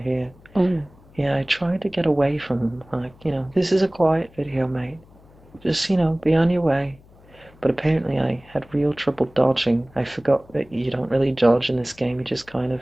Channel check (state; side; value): noise; left; hum, 26 dB below the sound